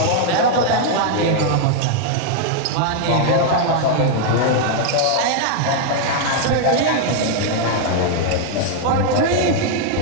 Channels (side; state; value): both; different; correlation 0.00